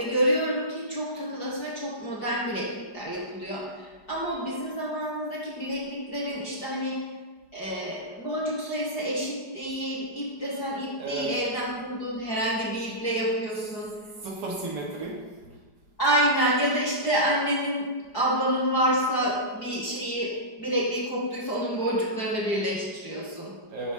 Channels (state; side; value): late; right; 4.9 ms